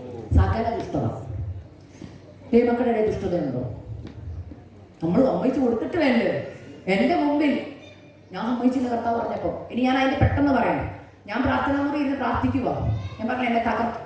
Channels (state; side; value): identical; both; correlation 1.00